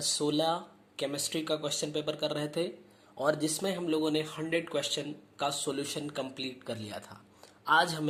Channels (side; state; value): both; identical; correlation 1.00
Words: केमिस्ट्री का क्वेश्चन पेपर कर रहे थे और जिसमें हम लोगों ने 100 क्वेश्चन का सॉल्यूशन कंप्लीट कर लिया था। आज